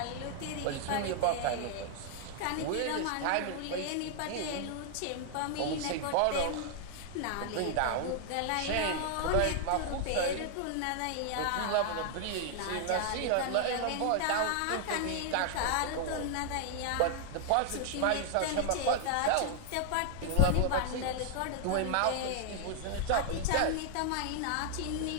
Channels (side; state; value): both; different; correlation 0.00